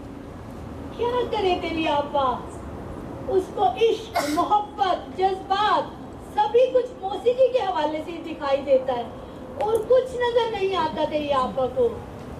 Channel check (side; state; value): both; identical; correlation 1.00